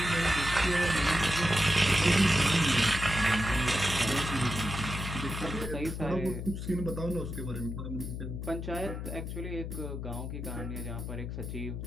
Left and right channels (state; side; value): noise; left; hum, 6 dB below the sound